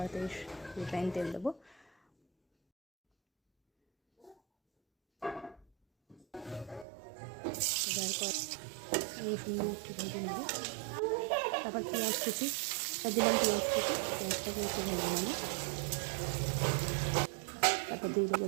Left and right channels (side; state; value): left; drops out; at 6.9 s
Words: রিফাইন তেল দেবো। এবার রসুন একটু ভেজে নেব, তারপর পেঁয়াজ কুচি দিলাম, পেঁয়াজটাকে একটু ভেজে নেব। তারপর দিয়ে দেবো